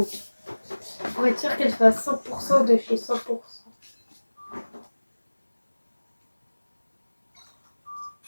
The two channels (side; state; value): both; inverted; correlation -1.00